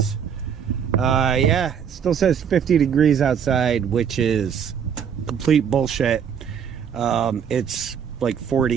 Yeah, it still says 50 degrees outside, which is complete bullshit. It's like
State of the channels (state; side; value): quieter; left; 7.8 dB